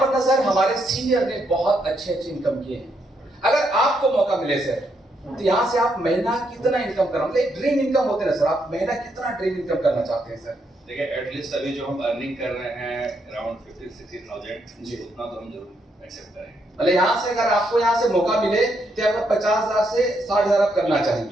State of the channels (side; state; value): both; normal; correlation 0.77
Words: पर ना सर हमारे सीनियर ने बहुत अच्छे इनकम किए हैं। अगर आपको मौका मिले सर, तो यहाँ से आप महीना कितना इनकम करना, मतलब ड्रीम इनकम होते ना सर, आप महीना कितना ड्रीम इनकम करना चाहते हैं सर? देखिए, एटलीस्ट अभी जो हम अर्निंग कर रहे हैं अराउंड 50-60,000 जी, उतना तो हम जरूर एक्सेप्ट करेंगे। मतलब यहाँ से अगर आपको यहाँ से मौका मिले तो आपको 50,000 से 60,000 आप करना